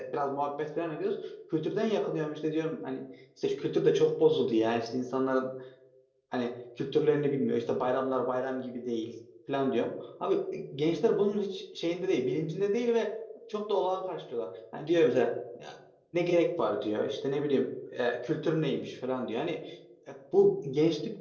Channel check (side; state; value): both; identical; correlation 1.00